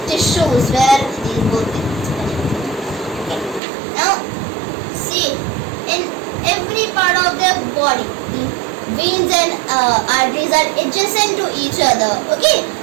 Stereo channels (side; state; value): left; drops out; at 3.6 s